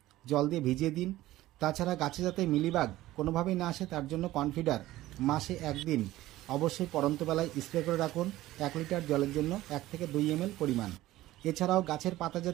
জল দিয়ে ভিজিয়ে দিন। তাছাড়া গাছে যাতে মিলিবাগ কোনোভাবেই না আসে তার জন্য কনফিডার মাসে একদিন অবশ্যই পড়ন্ত বেলায় স্প্রে করে রাখুন 1 লিটার জলের জন্য 1 থেকে 2 ml পরিমাণ। এছাড়াও গাছের পাতা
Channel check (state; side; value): quieter; left; 16.1 dB